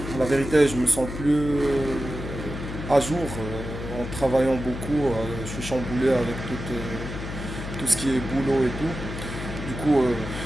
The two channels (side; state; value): left; noise; hum, 7 dB below the sound